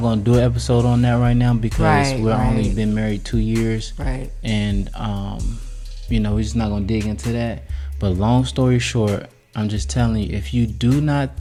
going to do an episode on that right now, because we're only been married 2 years. And we're just not going to dig into that. But long story short, I'm just telling you, if you do not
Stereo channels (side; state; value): both; identical; correlation 1.00